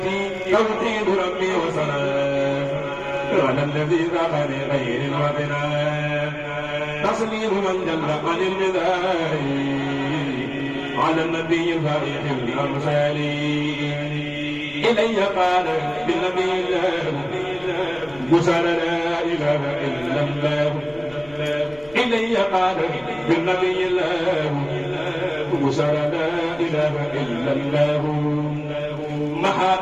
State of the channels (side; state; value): left; noise; rumble, 22 dB below the sound